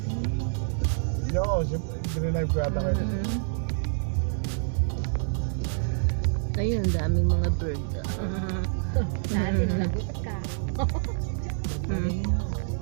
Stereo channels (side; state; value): left; silent; digital silence